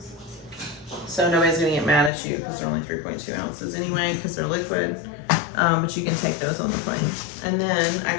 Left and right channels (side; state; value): right; drops out; at 2.1 s